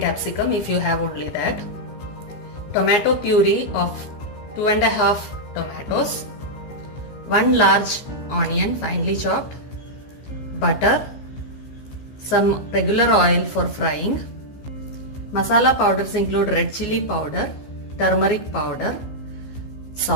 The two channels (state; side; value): late; right; 14 ms